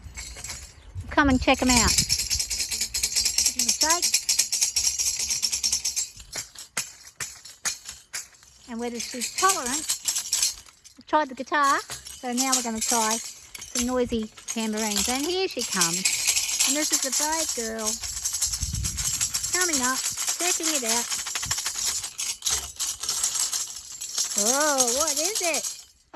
come and check them out. Give them a shake, and whether she's tolerant. I've tried the guitar, so now we're going to try some noisy tambourines. And here she comes, and this is a brave girl coming up, checking it out. Oh, what is it?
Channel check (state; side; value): identical; both; correlation 1.00